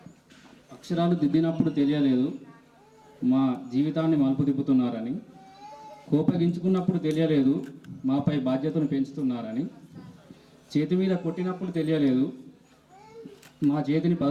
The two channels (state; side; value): identical; both; correlation 1.00